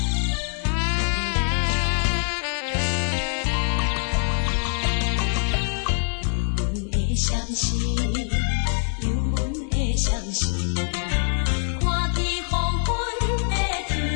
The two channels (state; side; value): silent; right; digital silence